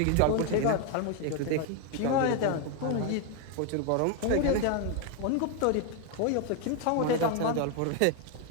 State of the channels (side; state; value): both; different; correlation 0.01